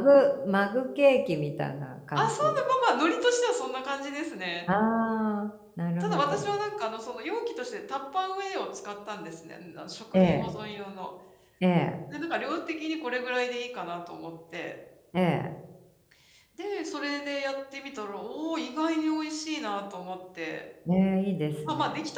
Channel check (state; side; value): identical; both; correlation 1.00